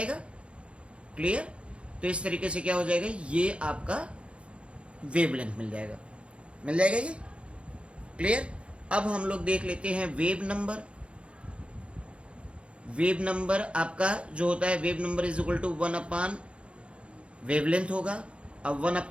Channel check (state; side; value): late; left; 0.059 ms